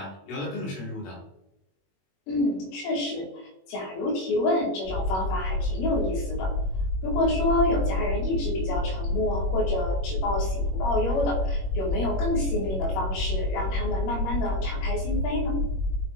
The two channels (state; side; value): late; right; 21 ms